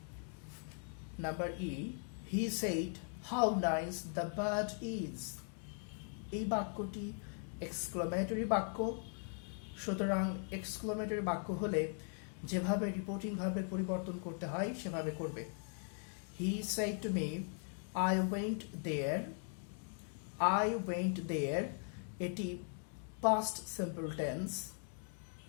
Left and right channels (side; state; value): right; silent; 51 dB below the other